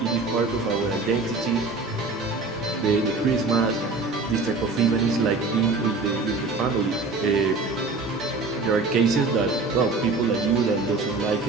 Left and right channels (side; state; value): left; quieter; 3.7 dB